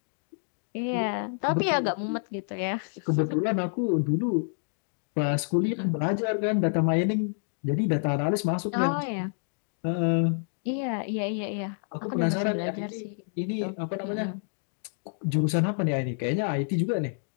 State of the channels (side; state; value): right; silent; 59 dB below the other